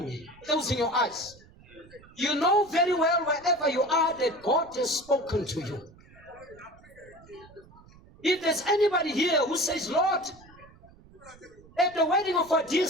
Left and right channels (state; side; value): noise; right; rumble, 24 dB below the sound